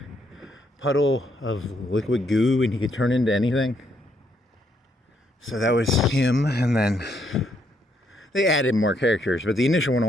puddle of liquid goo and he could turn into anything. So that was him, and then they added more characters, but the initial one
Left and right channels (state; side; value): normal; both; correlation 0.73